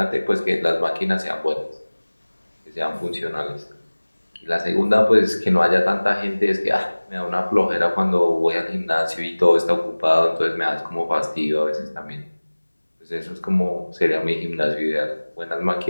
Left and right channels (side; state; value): both; inverted; correlation -1.00